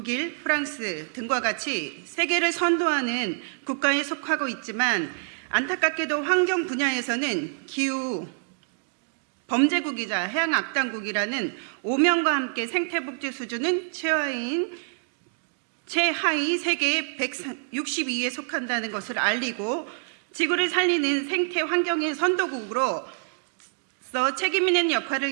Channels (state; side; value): silent; left; digital silence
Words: 프랑스 등과 같이 세계를 선도하는 국가에 속하고 있지만 안타깝게도 환경 분야에서는 기후 범죄국이자 해양악당국이라는 오명과 함께 생태복지 수준은 최하위 세계 162위에 속한다는 것을 알리고 지구를 살리는 생태 환경의 선도국으로 책임 있는